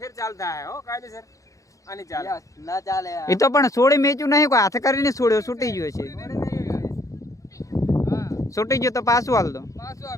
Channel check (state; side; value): late; right; 0.16 ms